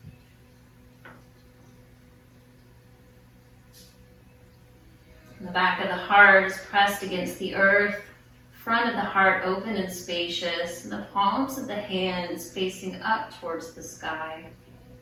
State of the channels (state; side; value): identical; both; correlation 1.00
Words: The back of the heart is pressed against the earth, front of the heart open and spacious, and the palms of the hands facing up towards the sky.